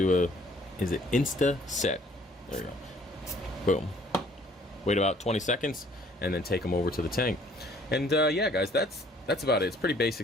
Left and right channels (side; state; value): both; normal; correlation 0.58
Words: a, is it insta-set? There you go. Boom. Wait about 20 seconds and then take them over to the tank. And yeah, guys, that's about it. It's pretty